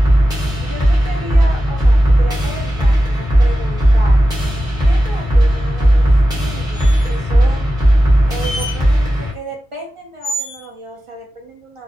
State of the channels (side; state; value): both; normal; correlation 0.94